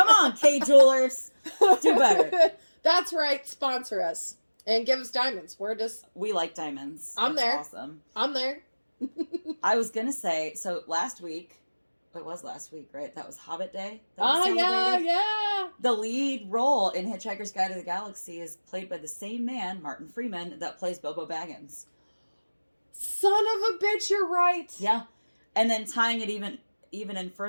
on, K Jewelers. Do better. That's right. Sponsor us. And give us diamonds. We like diamonds. I'm That's there. Awesome. I'm there. I was going to say, so last week, it was last week, right? That was Hobbit Day. Yeah. The lead role in Hitchhiker's Guide to the Galaxy is played by the same man, Martin Freeman, that plays Bilbo Baggins. Son of a bitch, you're right. Yeah. And then tying it even in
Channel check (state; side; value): inverted; both; correlation -1.00